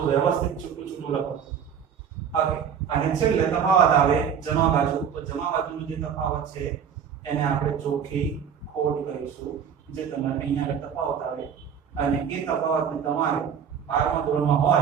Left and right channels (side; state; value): left; quieter; 7.7 dB